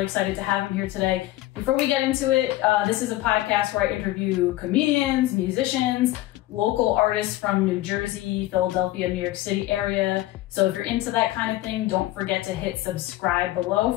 excited to have him here today. Before we get into it, this is a podcast where I interview comedians, musicians, local artists from New Jersey, Philadelphia, New York City area. So if you're into that kind of thing, don't forget to hit subscribe below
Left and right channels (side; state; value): right; quieter; 16.4 dB